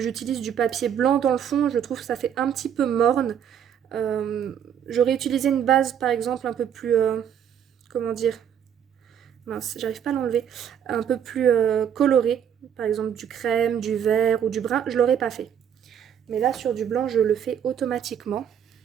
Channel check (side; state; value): left; quieter; 8.8 dB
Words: du papier blanc dans le fond, je trouve que ça fait un petit peu morne. J'aurais utilisé une base par exemple un peu plus, comment dire, mince, j'arrive pas à l'enlever, un peu plus colorée, par exemple du crème, du vert ou du brun, je l'aurais pas fait. Mais là sur du blanc, je le fais automatiquement.